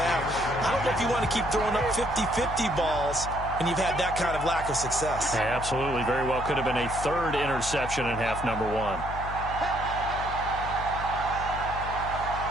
I don't know if you want to keep throwing up 50-50 balls and you've had that kind of lack of success. Yeah, absolutely. Very well could have been a third interception in half number 1.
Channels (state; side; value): noise; left; hum, 8 dB below the sound